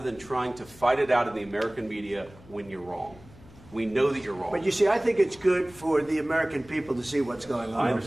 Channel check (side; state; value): left; noise; hum, 22 dB below the sound